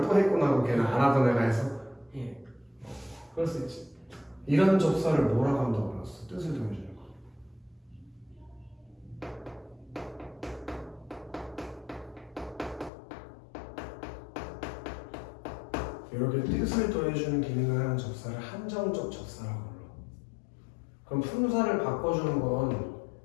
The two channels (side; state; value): right; drops out; at 12.9 s